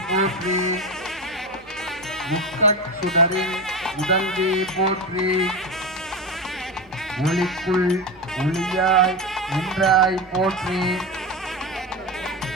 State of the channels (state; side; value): noise; left; hum, 29 dB below the sound